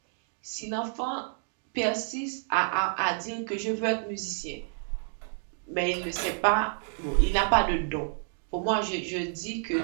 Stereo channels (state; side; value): silent; left; 58 dB below the other